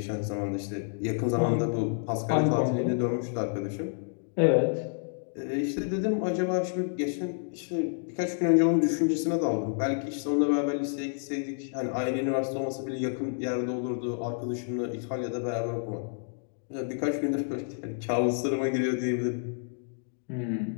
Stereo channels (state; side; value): silent; right; digital silence